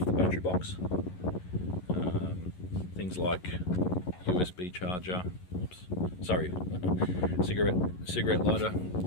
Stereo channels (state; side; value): late; right; 11 ms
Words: the battery box, things like USB charger, cigarette lighter